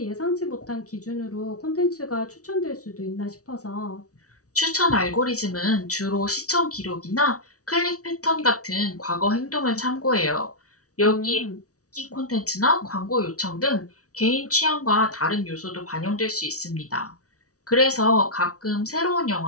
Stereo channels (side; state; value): right; late; 0.67 ms